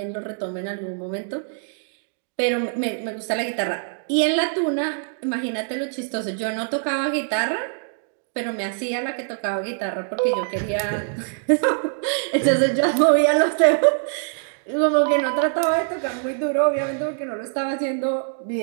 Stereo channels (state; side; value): silent; left; digital silence